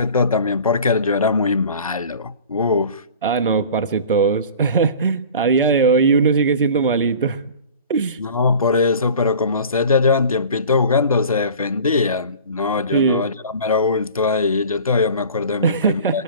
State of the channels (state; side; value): inverted; both; correlation -0.41